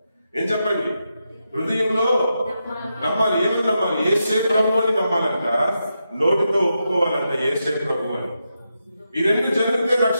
ఏం చెప్పండి? హృదయంలో నమ్మాలి. ఏమని నమ్మాలి? యేసే ప్రభు అని నమ్మాలంట, నోటితో ఒప్పుకోవాలంట యేసే ప్రభు అని. ఈ రెండు జరిగితే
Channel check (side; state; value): both; inverted; correlation -0.86